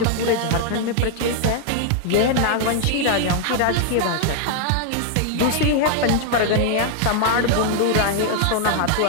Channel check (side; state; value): both; different; correlation 0.00